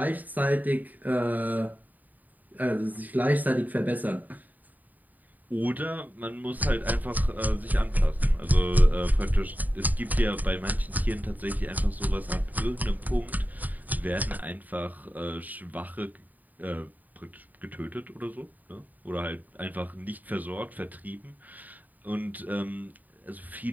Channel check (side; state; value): left; late; 0.083 ms